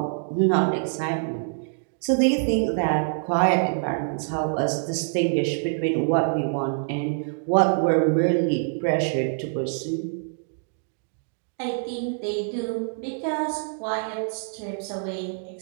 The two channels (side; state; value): left; silent; digital silence